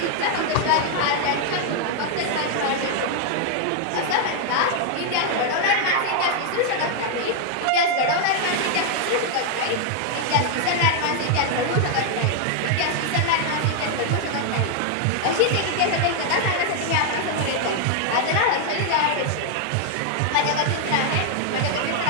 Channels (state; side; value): different; both; correlation 0.00